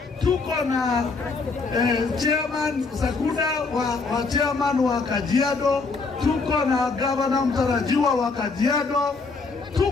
tuko na chairman Sakuda wa chairman wa Kajiado, tuko na governor mtarajiwa wa Kajiado,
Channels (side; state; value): right; quieter; 4.2 dB